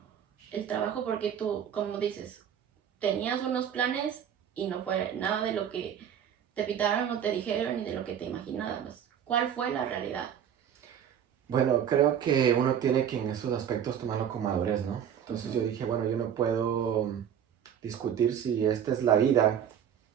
El trabajo porque tú, como dices, tenías unos planes y no fue nada de lo que te pitaron o te dijeron ni de lo que te imaginabas. ¿Cuál fue la realidad? Bueno, creo que uno tiene que en esos aspectos tomarlo con madurez, ¿no? Entonces yo Ujú. dije, bueno, yo no puedo discutir si esta es la vida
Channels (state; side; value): quieter; left; 9.0 dB